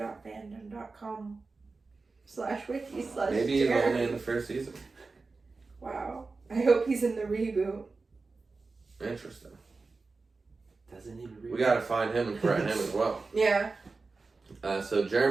Maybe he's only in the first season. Wow. I hope he's in the reboot. Interesting. Doesn't need to read. We gotta find him and threaten him as well. Yeah. So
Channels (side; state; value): left; quieter; 4.0 dB